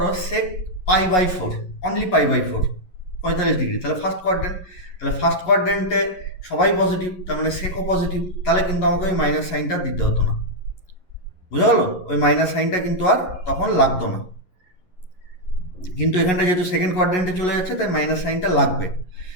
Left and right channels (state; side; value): late; right; 11 ms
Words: সেক π/4, অনলি π/4, 45 ডিগ্রি। তাহলে ফার্স্ট কোয়াড্রেন্টে সবাই পজিটিভ, তার মানে সেকও পজিটিভ। তাহলে কিন্তু আমাকে ওই মাইনাস সাইনটা দিতে হতো না। বুঝা গেল? ওই মাইনাস সাইনটা কিন্তু আর তখন লাগতো না। কিন্তু এখানটা যেহেতু সেকেন্ড কোয়াড্রেন্টে চলে যাচ্ছে, তাই মাইনাস সাইনটা লাগবে।